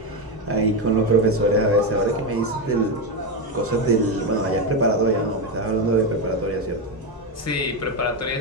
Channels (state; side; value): normal; both; correlation 0.10